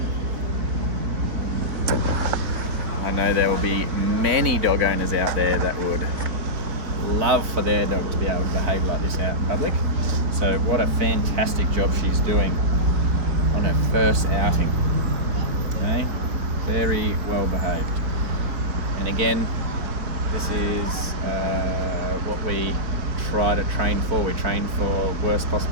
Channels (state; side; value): late; left; 4.0 ms